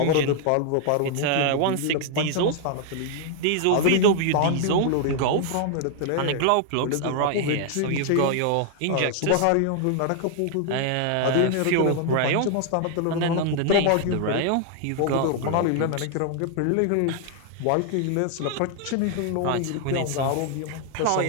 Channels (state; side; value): different; both; correlation 0.00